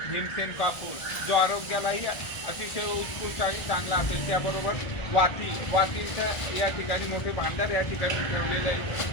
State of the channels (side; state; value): right; late; 1.5 ms